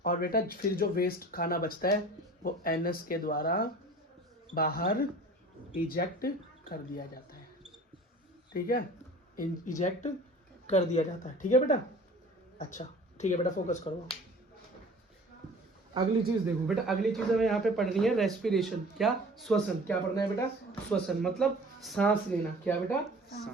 और बेटा फिर जो वेस्ट खाना बचता है वो एनस के द्वारा बाहर इजेक्ट कर दिया जाता है। ठीक है, इजेक्ट कर दिया जाता है। ठीक है बेटा, अच्छा ठीक है बेटा, फोकस करो। अगली चीज देखो बेटा, अगली चीज हमें यहाँ पे पढ़नी है रेस्पिरेशन। क्या? श्वसन। क्या पढ़ना है बेटा? श्वसन मतलब सांस लेना। क्या बेटा?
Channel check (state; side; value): normal; both; correlation 0.44